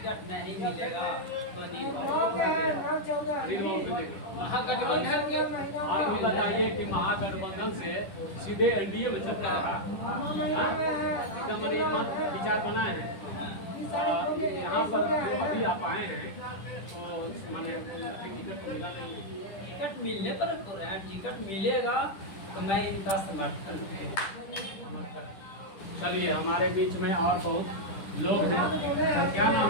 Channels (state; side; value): late; right; 10 ms